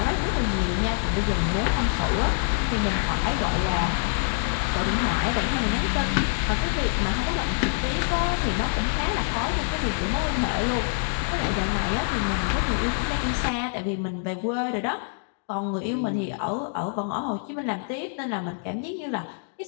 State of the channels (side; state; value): right; silent; digital silence